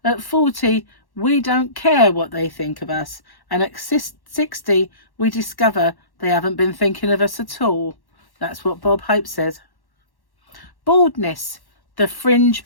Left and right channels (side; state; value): right; late; 1.1 ms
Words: At 40, we don't care what they think of us. And at 60, we discover they haven't been thinking of us at all. That's what Bob Hope says. Baldness, the fringe